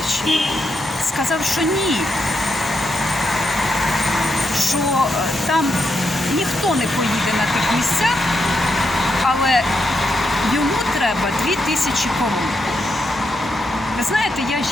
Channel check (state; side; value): normal; both; correlation 0.82